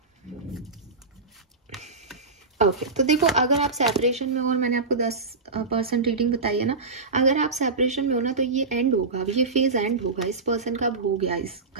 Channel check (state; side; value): quieter; left; 4.0 dB